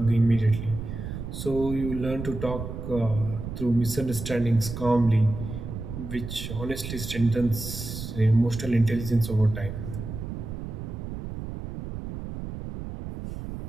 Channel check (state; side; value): noise; right; rumble, 7 dB below the sound